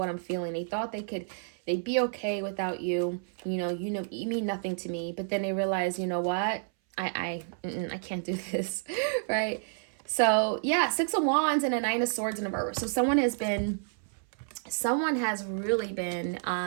I'm feeling. They thought they'd be okay without you. You know, you mean nothing to me. But then they realize, you know what? I can't do this, right? So yeah, Six of Wands and a Nine of Swords in reverse. So someone has really been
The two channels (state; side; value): silent; left; 58 dB below the other